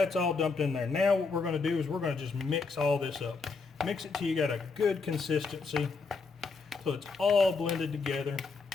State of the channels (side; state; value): right; quieter; 4.5 dB